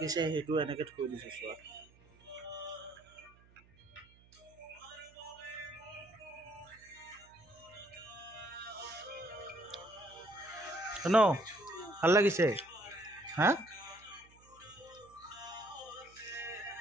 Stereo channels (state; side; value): noise; right; hum, 26 dB below the sound